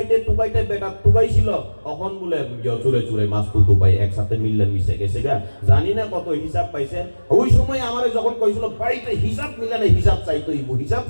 বেটা টুকাইছিল তখন বলে চুরে চুরে মাছ তো টুকাই একসাথে মিললে মিশে গেছে গা, জানি না কত হিসাব পাইছে। ওই সময় আমারে যখন কইছিল বাড়িতে হিসাব মিলে না, হিসাব চাইতে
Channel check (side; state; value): both; inverted; correlation -1.00